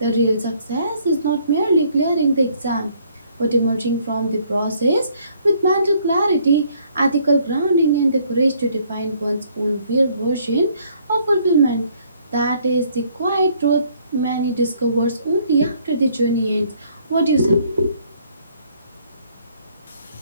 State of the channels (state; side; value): inverted; both; correlation -0.64